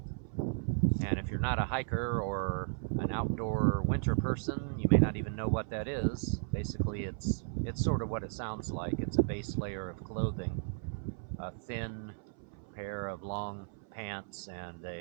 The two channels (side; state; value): left; silent; 55 dB below the other